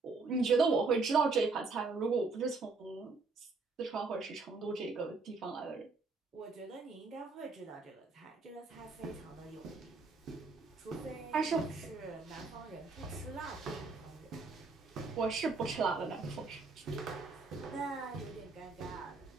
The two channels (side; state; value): left; quieter; 4.1 dB